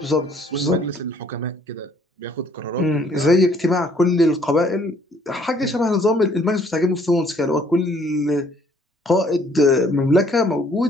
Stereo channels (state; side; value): normal; both; correlation 0.62